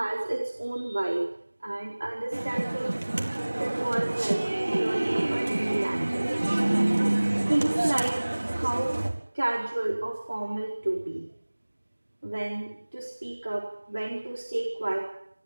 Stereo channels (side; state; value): both; inverted; correlation -1.00